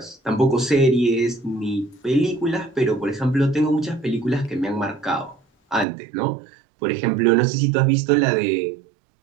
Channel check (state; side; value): drops out; left; at 5.9 s